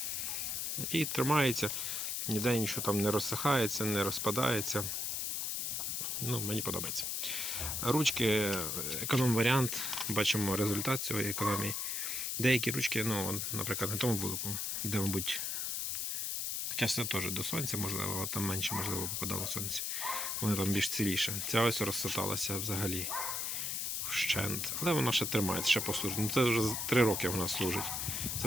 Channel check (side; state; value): left; noise; hiss, 1 dB below the sound